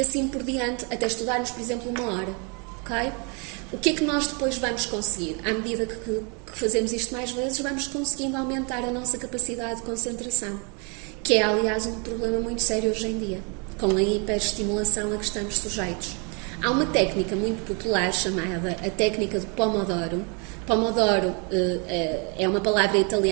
por diante, até estudarmos, por exemplo, 1 hora. Ok? O que é que nós depois vamos conseguir? À medida que fazemos isto mais vezes, vamos conseguindo aumentar a nossa capacidade de concentração, que é, aliás, um problema muito sério hoje em dia, com a hiperestimulação a que estamos sujeitos. Há uma técnica muito popular chamada a técnica do Pomodoro. Pomodoro é uma palavra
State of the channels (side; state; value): left; quieter; 34.5 dB